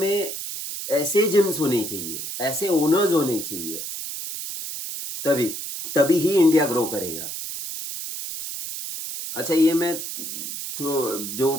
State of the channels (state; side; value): noise; right; hiss, 7 dB below the sound